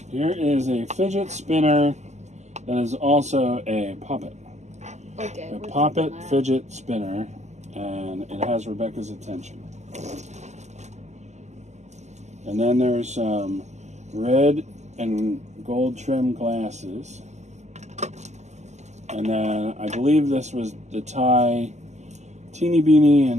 Here is a fidget spinner that is also a poppet. Okay. A poppet fidget spinner, and it has Rebecca's attention. And then there's some red and gold trim glasses. And then I believe this was the Thai Teeny Beanie,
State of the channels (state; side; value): late; left; 0.33 ms